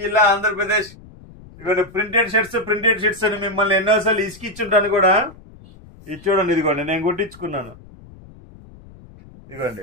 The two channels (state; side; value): noise; left; rumble, 21 dB below the sound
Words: జిల్లా, ఆంధ్రప్రదేశ్. ఇదిగోండి ప్రింటెడ్ షర్ట్స్ అని మిమ్మల్ని ఎన్నోసార్లు ఇసుకిచ్చుంటాను కూడా. ఇది చూడండి, ఇదిగోండి నేను కుట్టించుకున్నాను.